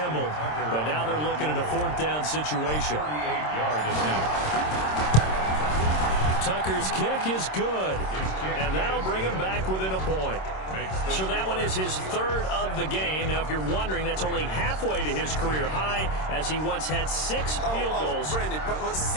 But now they're looking at a 4th down situation. 38-yard attempt. Tucker's kick is good. And that'll bring him back within a point. So that one is his 3rd of the game. Now, if you're wondering, that's only halfway to his career high, as he once had 6 field goals. Brandon, but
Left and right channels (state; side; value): late; right; 26 ms